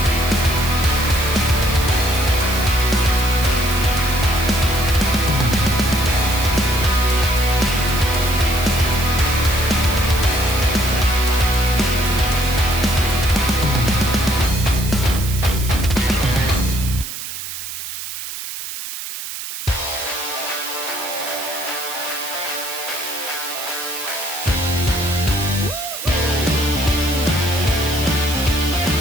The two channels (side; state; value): right; noise; hiss, 8 dB below the sound